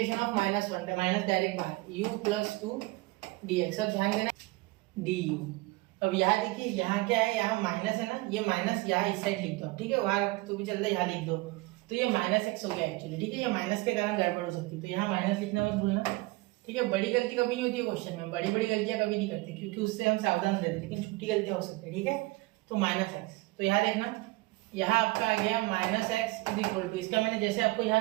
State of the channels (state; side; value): quieter; left; 22.3 dB